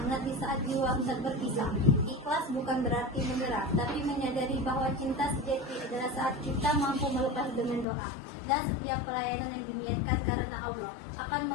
di saat jiwa hendak berpisah. Ikhlas bukan berarti menyerah, tapi menyadari bahwa cinta sejati adalah saat kita mampu melepas dengan doa. Dan setiap pelayanan yang diniatkan karena Allah akan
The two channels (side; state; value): right; drops out; at 7.9 s